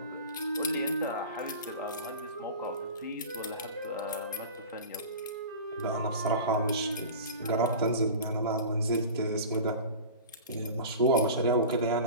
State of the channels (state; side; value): inverted; both; correlation -0.34